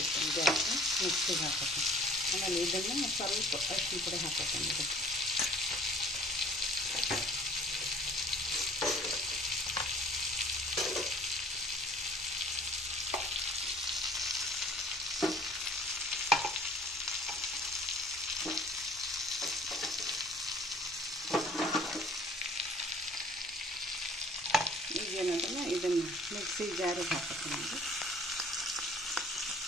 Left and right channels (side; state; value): both; normal; correlation 0.52